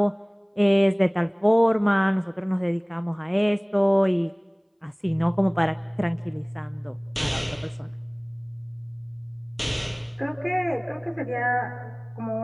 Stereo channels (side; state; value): both; identical; correlation 1.00